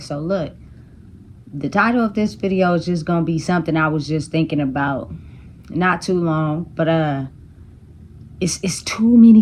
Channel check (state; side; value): identical; both; correlation 1.00